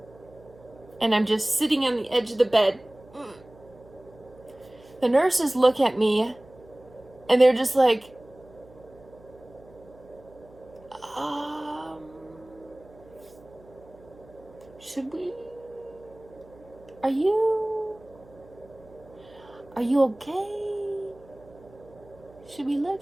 And I'm just sitting on the edge of the bed. The nurses look at me, and they're just like, should we, are you okay? Should we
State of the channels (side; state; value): right; noise; hum, 24 dB below the sound